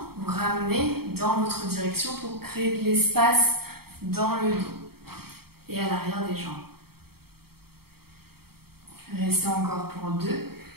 Vous ramenez dans votre direction pour créer de l'espace dans le dos et à l'arrière des jambes. Restez encore pour 2.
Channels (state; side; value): late; left; 0.95 ms